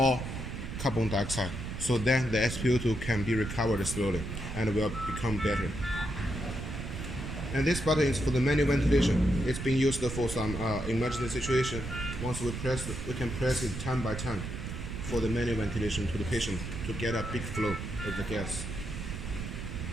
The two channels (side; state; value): right; noise; rumble, 6 dB below the sound